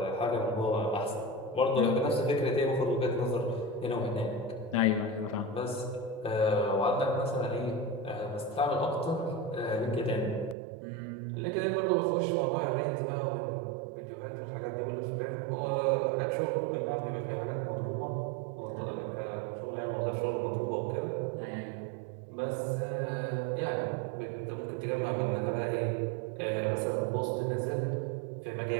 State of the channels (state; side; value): drops out; left; at 10.6 s